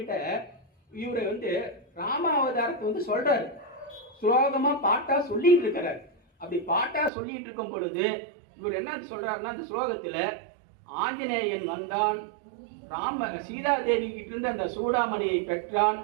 இவரை ராமாவதாரத்தை சொல்றாரு, ஸ்லோகமா பாட்டா சொல்லிட்டு இருக்கிறார். அப்படி பாட்டா சொல்லிட்டு இருக்கும் பொழுது இவர் என்ன சொல்றாருன்னா, அந்த ஸ்லோகத்துல ஆஞ்சநேயன் வந்தான், சீதாதேவி கிட்ட இருந்து அந்த சூடாமணியை பெற்றான்,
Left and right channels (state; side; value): drops out; left; at 7.1 s